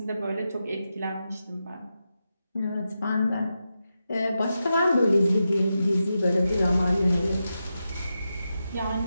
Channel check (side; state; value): both; inverted; correlation -0.89